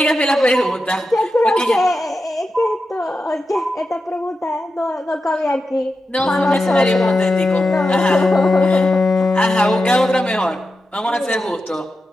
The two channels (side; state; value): both; normal; correlation 0.90